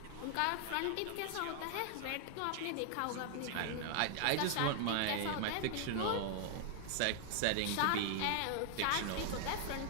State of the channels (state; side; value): different; both; correlation 0.00